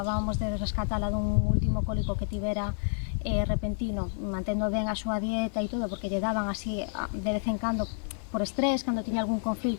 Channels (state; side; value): silent; right; 58 dB below the other